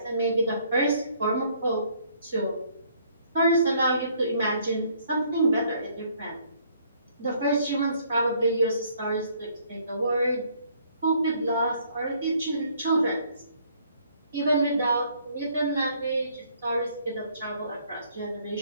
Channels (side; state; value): both; inverted; correlation -0.64